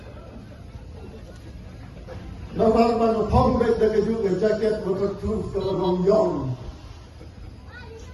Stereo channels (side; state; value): both; identical; correlation 1.00